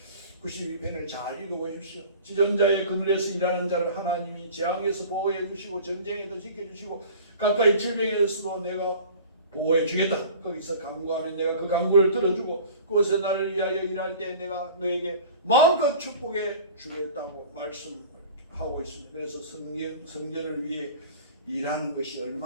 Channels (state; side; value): inverted; both; correlation -0.42